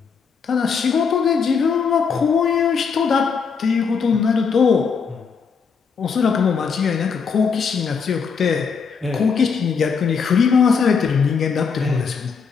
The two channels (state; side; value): quieter; right; 5.8 dB